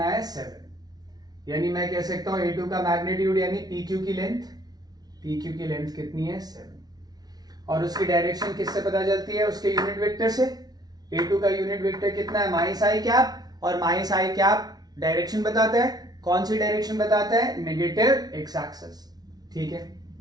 है, 7। यानी मैं कह सकता हूं A2 का मैग्नीट्यूड यानी PQ की लेंथ, PQ की लेंथ कितनी है, 7। और उसकी डायरेक्शन किससे पता चलती है, उसके यूनिट वेक्टर से। A2 का यूनिट वेक्टर कितना है, माइनस आई कैप, और माइनस आई कैप डायरेक्शन बताता है, कौन सी डायरेक्शन बताता है, नेगेटिव एक्स एक्सिस, ठीक है।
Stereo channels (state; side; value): late; left; 0.19 ms